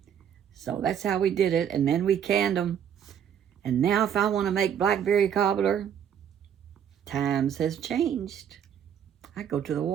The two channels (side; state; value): left; quieter; 8.8 dB